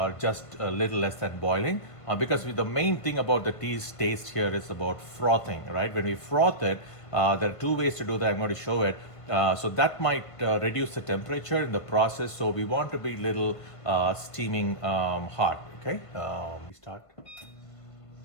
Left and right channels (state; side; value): late; right; 1.5 ms